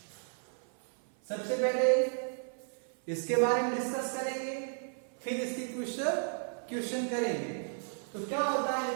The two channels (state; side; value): silent; left; 55 dB below the other